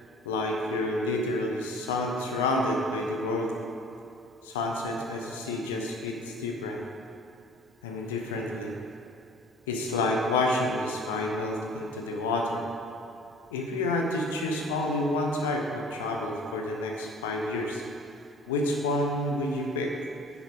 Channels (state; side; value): normal; both; correlation 0.47